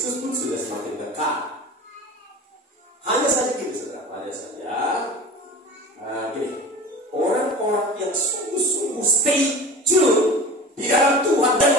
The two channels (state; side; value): normal; both; correlation 0.36